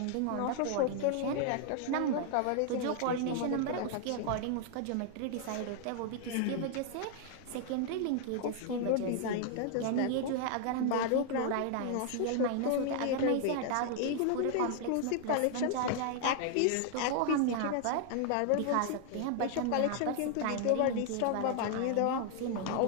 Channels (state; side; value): different; both; correlation 0.00